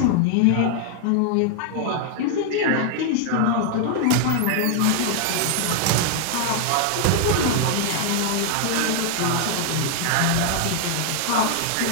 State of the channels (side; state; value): both; different; correlation 0.00